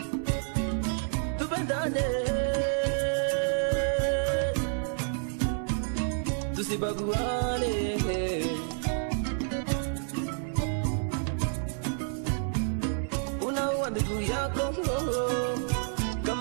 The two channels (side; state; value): left; silent; 57 dB below the other